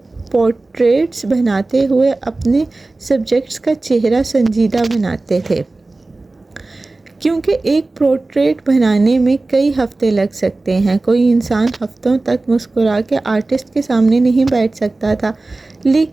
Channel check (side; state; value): left; quieter; 3.2 dB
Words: پورٹریٹس بناتے ہوئے اپنے سبجیکٹس کا چہرہ سنجیدہ بناتے تھے، کیونکہ ایک پورٹریٹ بنانے میں کئی ہفتے لگ سکتے ہیں۔ کوئی انسان ہفتوں تک مسکرا کے آرٹسٹ کے سامنے نہیں بیٹھ سکتا تھا،